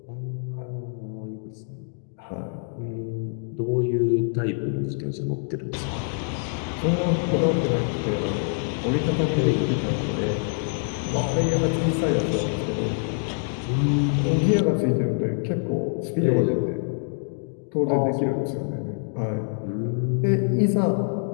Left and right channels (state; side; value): silent; right; 62 dB below the other